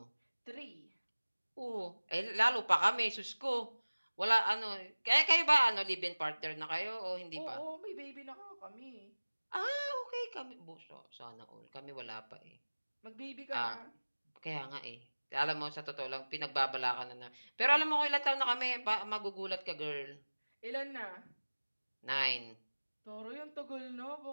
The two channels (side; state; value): both; inverted; correlation -1.00